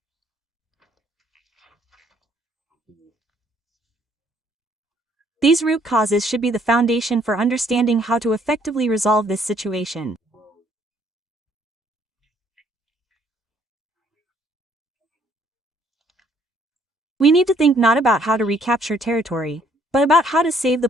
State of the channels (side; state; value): both; normal; correlation 0.65